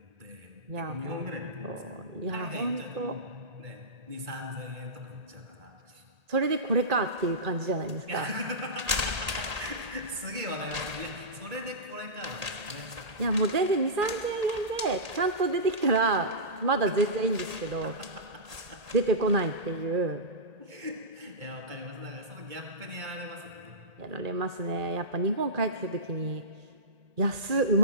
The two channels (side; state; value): left; late; 1.8 ms